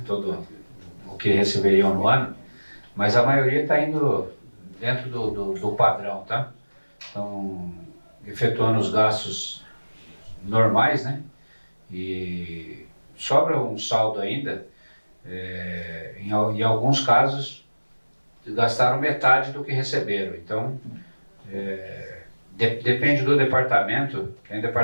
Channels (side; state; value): both; inverted; correlation -1.00